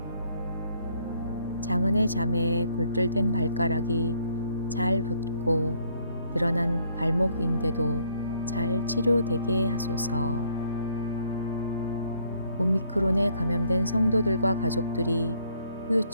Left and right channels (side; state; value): both; inverted; correlation -0.66